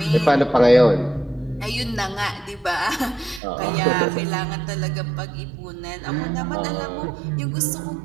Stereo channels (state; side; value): drops out; left; at 3.4 s